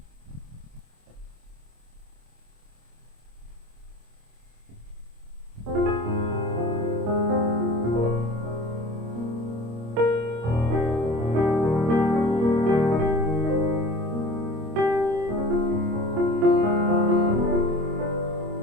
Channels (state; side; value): late; left; 25 ms